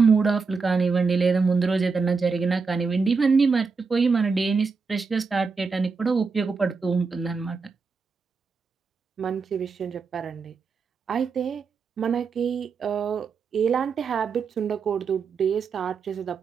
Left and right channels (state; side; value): quieter; left; 4.9 dB